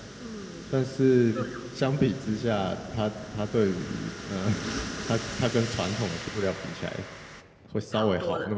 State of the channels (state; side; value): identical; both; correlation 1.00